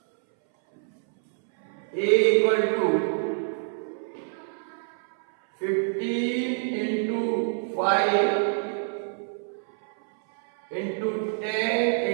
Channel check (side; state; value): left; silent; 61 dB below the other